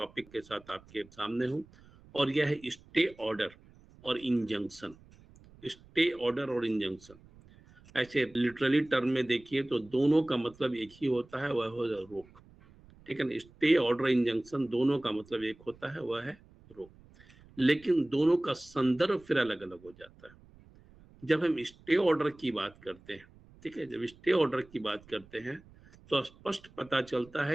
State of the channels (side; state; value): right; noise; rumble, 25 dB below the sound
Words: के साथ आपके सामने हूं, और यह है स्टे ऑर्डर और इंजंक्शन। स्टे ऑर्डर और इंजंक्शन, ऐसे लिटरली टर्म में देखिए तो दोनों का मतलब एक ही होता है, वह हो रोक। ठीक है ना, स्टे ऑर्डर इंजंक्शन दोनों का मतलब एक होता है, वह है रोक, लेकिन दोनों का संदर्भ फिर अलग अलग हो जाता है। जब हम स्टे ऑर्डर की बात करते हैं, ठीक है, जब स्टे ऑर्डर की बात करते हैं तो स्पष्ट पता चलता